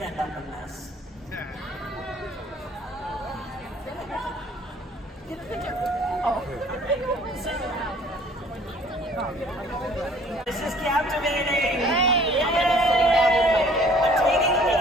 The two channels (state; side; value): normal; both; correlation 0.54